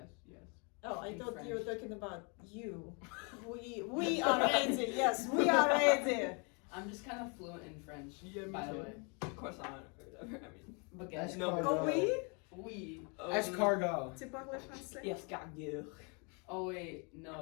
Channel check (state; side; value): quieter; right; 34.5 dB